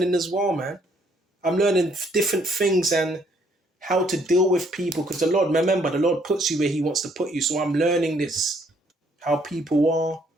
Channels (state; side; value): normal; both; correlation 0.67